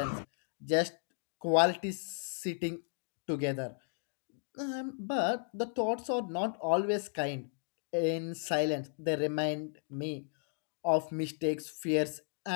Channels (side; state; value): right; silent; 55 dB below the other